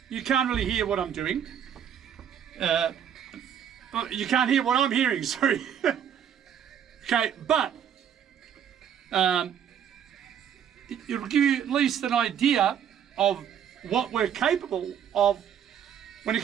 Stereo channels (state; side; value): quieter; left; 8.9 dB